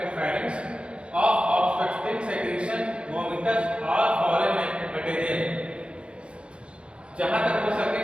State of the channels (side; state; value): left; late; 0.058 ms